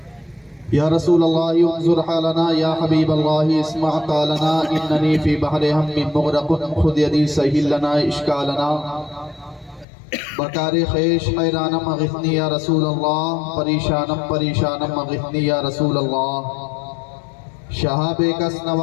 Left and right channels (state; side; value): drops out; right; at 9.9 s